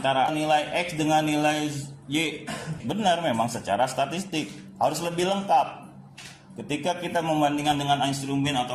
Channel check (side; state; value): both; identical; correlation 1.00